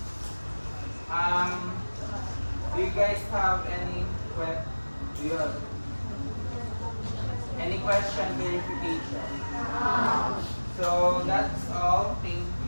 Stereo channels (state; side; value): inverted; both; correlation -1.00